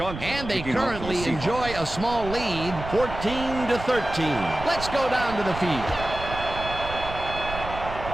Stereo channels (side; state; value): right; noise; rumble, 9 dB below the sound